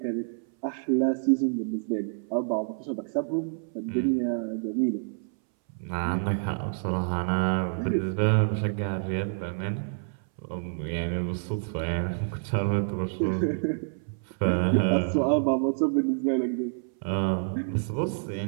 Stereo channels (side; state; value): left; silent; 59 dB below the other